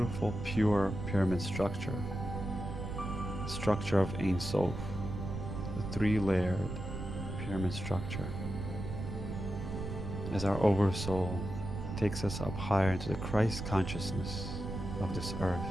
pure pyramid structure of Ein Sof, the three-layered pyramid structure. As our oversoul takes us up higher into the Christ consciousness of this earth,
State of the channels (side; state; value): right; noise; rumble, 6 dB below the sound